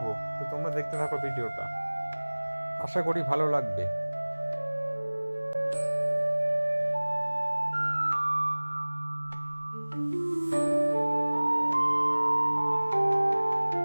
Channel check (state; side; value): inverted; both; correlation -1.00